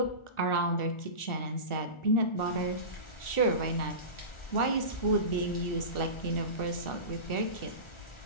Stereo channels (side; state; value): right; late; 1.4 ms